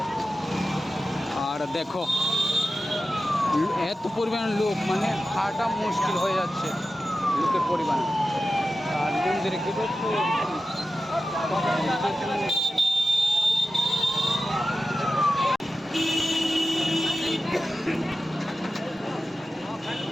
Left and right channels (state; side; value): normal; both; correlation 0.93